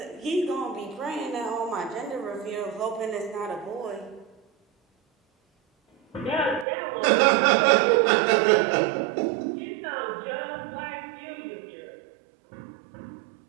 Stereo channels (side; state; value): left; drops out; at 6.7 s